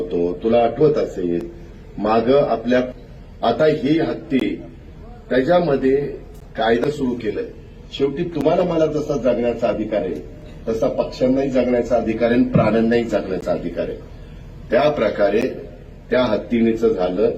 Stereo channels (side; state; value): both; identical; correlation 1.00